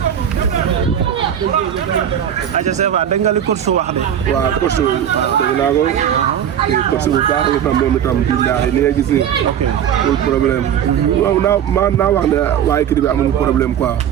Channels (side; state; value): left; quieter; 9.5 dB